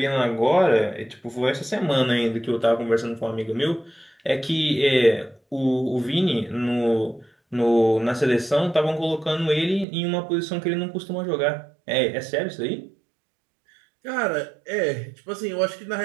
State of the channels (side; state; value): left; drops out; at 9.9 s